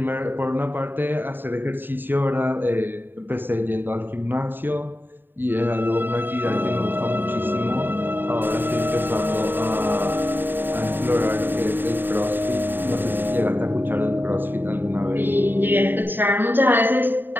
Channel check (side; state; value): left; late; 0.094 ms